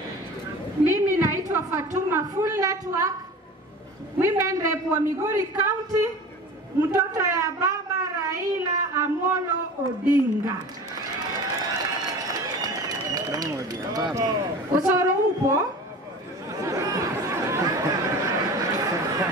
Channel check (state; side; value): normal; both; correlation 0.37